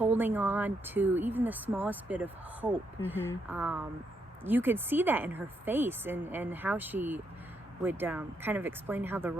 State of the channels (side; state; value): both; normal; correlation 0.78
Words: on to even the smallest bit of hope. You could see that in her face and how she would kind of explain how the